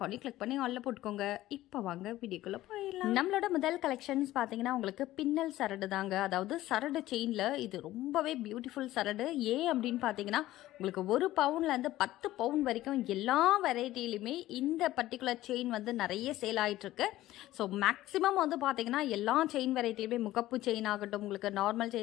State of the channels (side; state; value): right; quieter; 15.5 dB